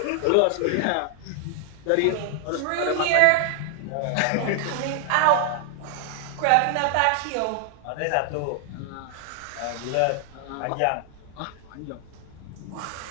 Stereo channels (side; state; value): both; different; correlation 0.00